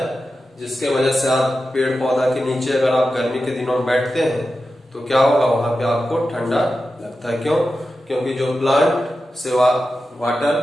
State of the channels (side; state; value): both; normal; correlation 0.91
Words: जिसके वजह से आप पेड़ पौधा के नीचे अगर आप गर्मी के दिनों में बैठते हैं तो क्या होगा, वहां पे आपको ठंडा लगता है। क्यों, क्योंकि जो प्लांट से